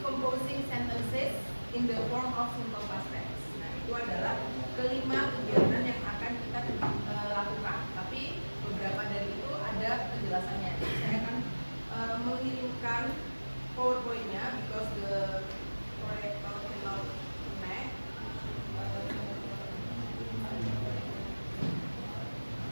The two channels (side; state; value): both; inverted; correlation -1.00